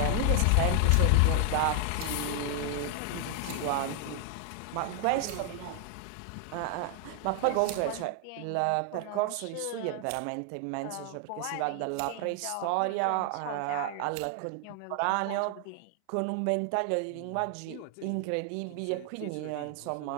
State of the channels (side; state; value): both; different; correlation 0.00